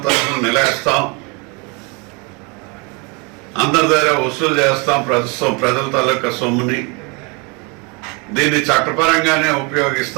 తరఫున నిలేస్తాం, అందరి దగ్గర వసూలు చేస్తాం. ప్రజల తాలూకా సొమ్ముని దీన్ని చట్టపరంగానే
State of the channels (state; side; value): quieter; left; 30.9 dB